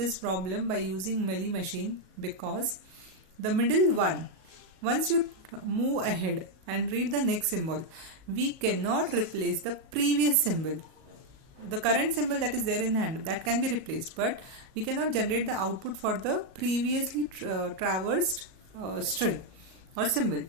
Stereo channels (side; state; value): left; late; 38 ms